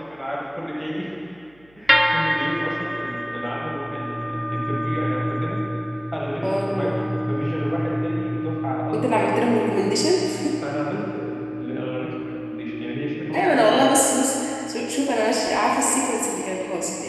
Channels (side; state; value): right; noise; hum, 30 dB below the sound